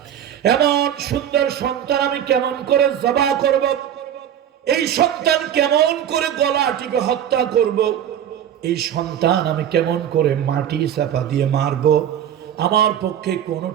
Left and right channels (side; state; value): left; quieter; 10.0 dB